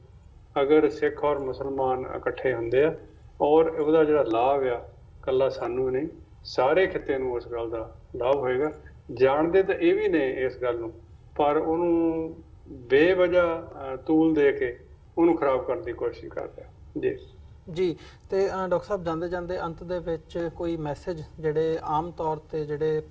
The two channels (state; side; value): identical; both; correlation 1.00